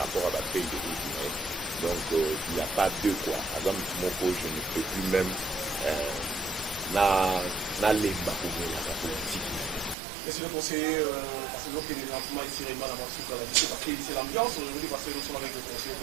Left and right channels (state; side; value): drops out; left; at 10.0 s